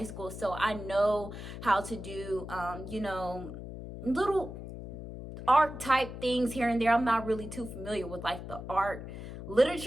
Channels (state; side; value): noise; left; hum, 10 dB below the sound